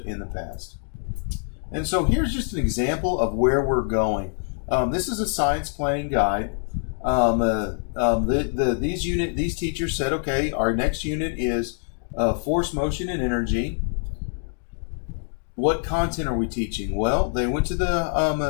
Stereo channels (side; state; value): right; silent; 62 dB below the other